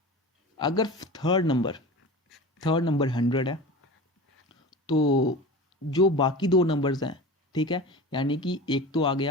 अगर third number 100 है तो जो बाकी दो नंबर्स हैं, ठीक है, यानी कि एक तो आ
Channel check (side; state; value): both; normal; correlation 0.32